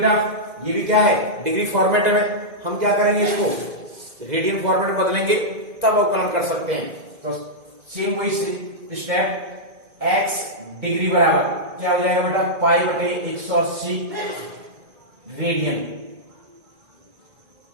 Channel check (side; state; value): left; late; 2.1 ms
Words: ये भी क्या है, डिग्री फॉर्मेट में। हम क्या करेंगे, इसको रेडियन फॉर्मेट में बदलेंगे तब अवकलन कर सकते हैं। तो सेम वही स्टेप, x डिग्री बराबर क्या हो जाएगा बेटा, पाई बटे 180 रेडियन।